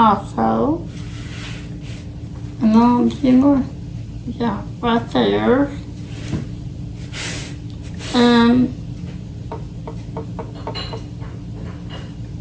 And then a few more. Yeah, right there. And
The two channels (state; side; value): identical; both; correlation 1.00